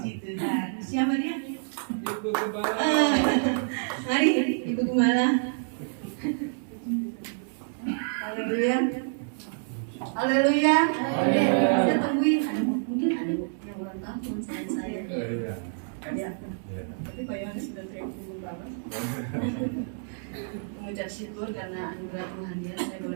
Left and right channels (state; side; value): silent; left; 59 dB below the other